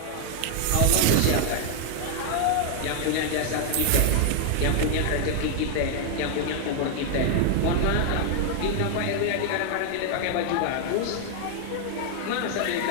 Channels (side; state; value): both; different; correlation 0.00